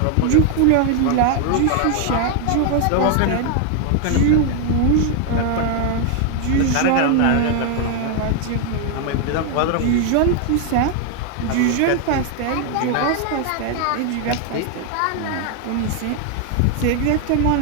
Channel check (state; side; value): different; both; correlation 0.00